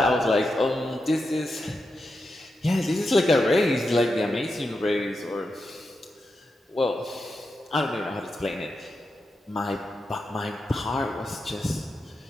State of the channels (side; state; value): both; normal; correlation 0.88